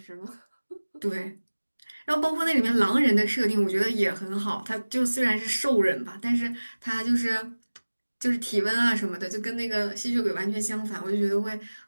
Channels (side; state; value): both; inverted; correlation -1.00